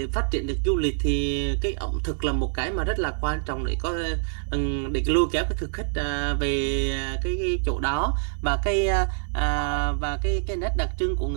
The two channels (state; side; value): silent; left; digital silence